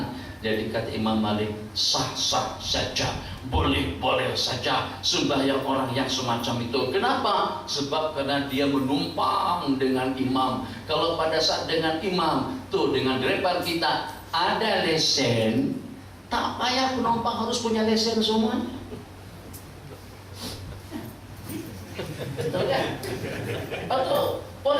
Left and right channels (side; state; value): both; identical; correlation 1.00